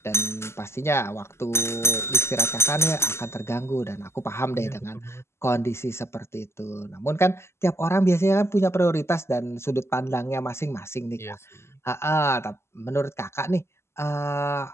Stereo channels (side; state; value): right; late; 0.13 ms